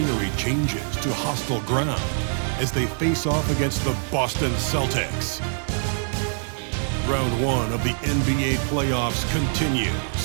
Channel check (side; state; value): left; silent; digital silence